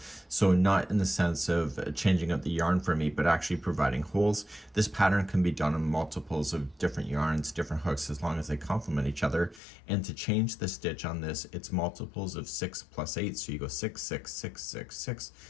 So not in the sense of changing up the yarn for me, but actually providing holes. This pattern can be done in multiples of different yarns, different hooks, as long as they complement each other. And to change the stitch on this, it's multiples of 6 plus 8. So you go 6, 6, 6, 6, 6.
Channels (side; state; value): right; drops out; at 9.6 s